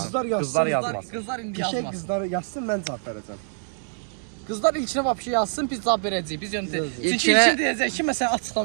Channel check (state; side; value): silent; left; digital silence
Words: Qızlar yazmasın. Qızlar indi Qəşəng yazmasın. qızlar yazsın, mən cavab verəcəm. Qızlar ilkinə vapşı yazsın, biz cavab verəcəyik. Biz yöntə. Çünki İlkinə- ilkin deyəcək ki, məsələn